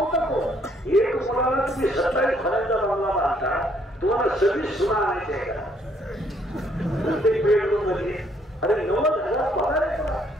को एक मुलाला तुम्ही 27 फळांचा बंगला बांधता, तुम्हाला 26 सुना आणायचे आहे का? प्रत्येक बेडरूम मध्ये अरे 90,000 पगार आहे तुला.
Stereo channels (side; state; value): both; normal; correlation 0.67